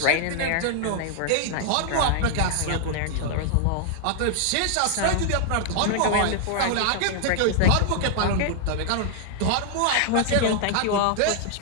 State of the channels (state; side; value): different; both; correlation 0.00